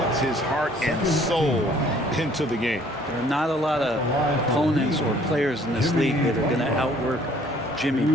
his heart and soul into the game. There are not a lot of opponents or players in this league that are going to outwork Jimmy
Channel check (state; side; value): normal; both; correlation 0.58